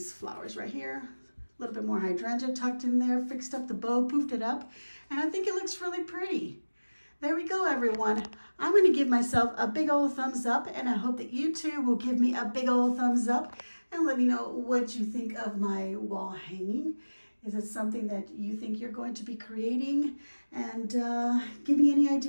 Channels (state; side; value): inverted; both; correlation -1.00